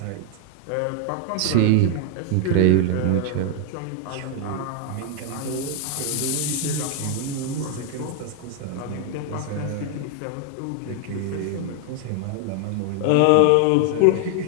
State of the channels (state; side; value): different; both; correlation 0.01